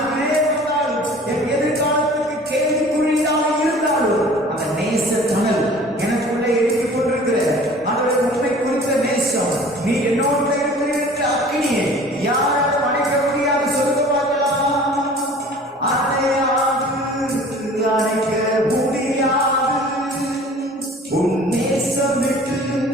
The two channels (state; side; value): normal; both; correlation 0.46